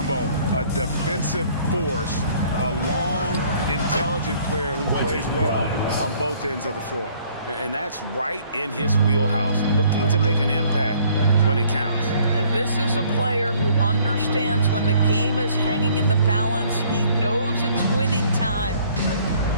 a defensive force, a long, intelligent player who plays well on both ends of the floor. And that's right in his wheelhouse, looking to make an impact when it counts. And this is a player who understands when the game is hanging in the balance. He knows it's winning time.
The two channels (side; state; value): both; inverted; correlation -0.60